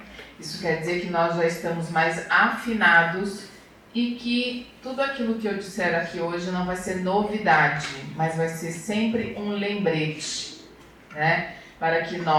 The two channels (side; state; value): both; identical; correlation 1.00